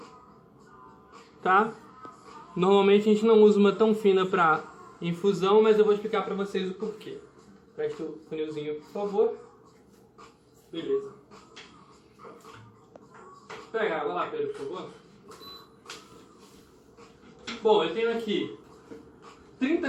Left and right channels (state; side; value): identical; both; correlation 1.00